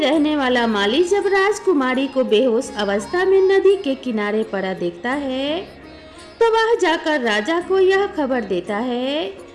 रहने वाला माली जब राजकुमारी को बेहोश अवस्था में नदी के किनारे पड़ा देखता है तो वह जाकर राजा को यह खबर देता है।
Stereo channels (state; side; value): identical; both; correlation 1.00